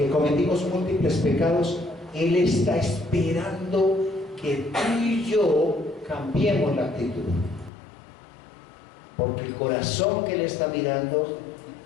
cometimos múltiples pecados, Él está esperando que tú y yo cambiemos la actitud. Porque el corazón que Él está mirando,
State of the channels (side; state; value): right; drops out; at 7.7 s